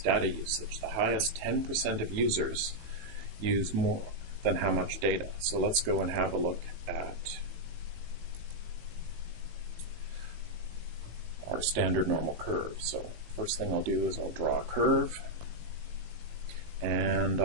data usage. The highest 10% of users use more than how much data. So let's go and have a look at our standard normal curve. So first thing I'll do is I'll draw a curve, and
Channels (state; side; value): late; left; 18 ms